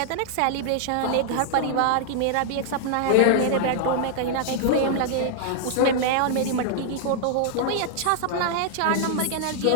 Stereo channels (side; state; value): both; different; correlation -0.01